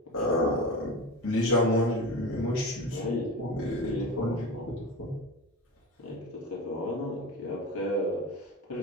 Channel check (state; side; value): normal; both; correlation 0.28